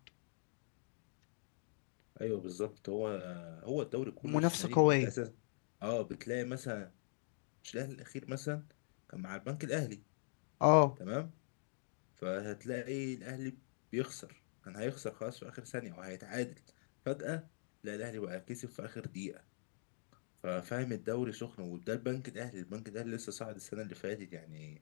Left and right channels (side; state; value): right; silent; digital silence